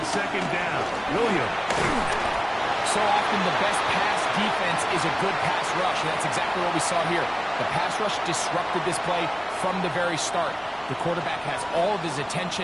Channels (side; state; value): both; identical; correlation 1.00